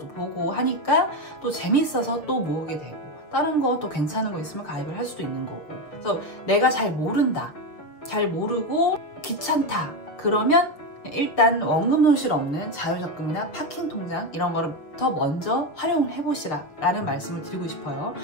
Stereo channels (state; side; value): late; right; 6.4 ms